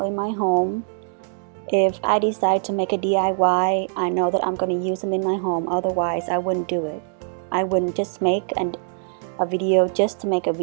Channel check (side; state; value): left; silent; digital silence